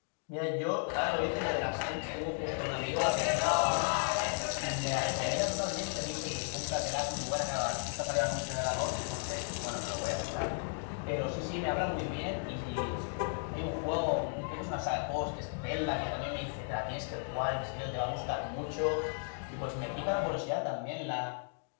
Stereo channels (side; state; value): right; silent; 55 dB below the other